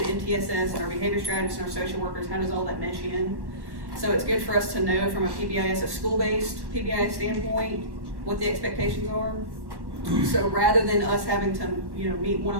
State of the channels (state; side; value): late; left; 1.1 ms